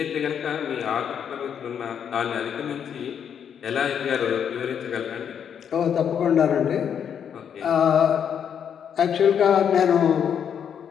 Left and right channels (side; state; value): right; quieter; 8.2 dB